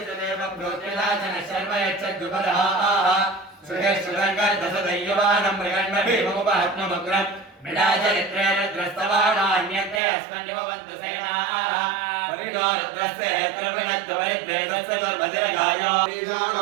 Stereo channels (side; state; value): left; drops out; at 10.0 s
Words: प्रोत्तिलाचन शर्म यच्छद्विपदः सुहेश्वरङ्गर्दशदैयवानं मृगन्मभीममुपहत्ममग्रम् मृडाचरित्रे रुद्रस्तवानान्यते अस्मन्निवन्तु सेनाः परिणो रुद्रस्य हेत्रविणद्वरिद्वेदस्य दुर्भद्रगायो